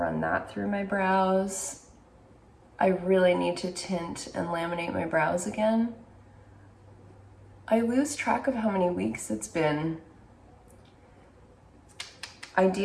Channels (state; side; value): identical; both; correlation 1.00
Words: that through my brows. I really need to tint and laminate my brows again. I lose track of how many weeks it's been.